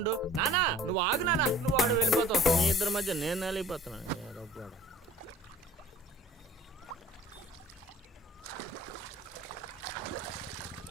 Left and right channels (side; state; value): both; normal; correlation 0.49